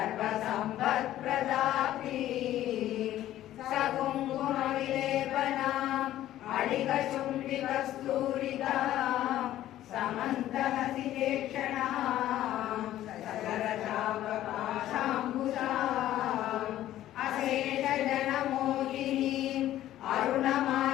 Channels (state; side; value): quieter; right; 13.3 dB